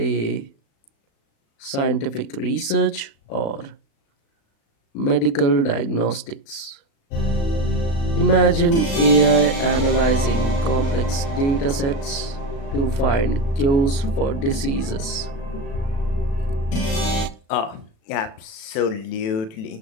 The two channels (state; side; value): late; right; 36 ms